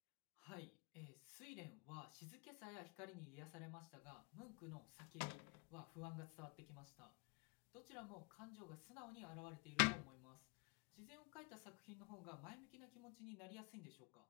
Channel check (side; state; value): right; quieter; 32.3 dB